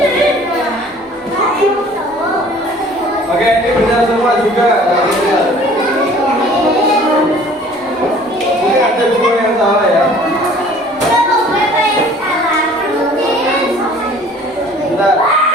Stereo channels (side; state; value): both; normal; correlation 0.51